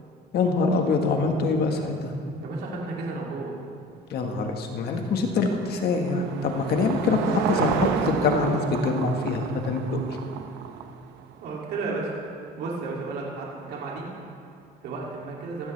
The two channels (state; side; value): normal; both; correlation 0.40